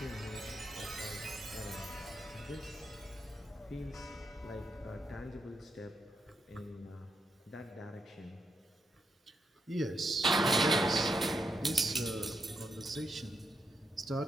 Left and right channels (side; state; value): both; normal; correlation 0.82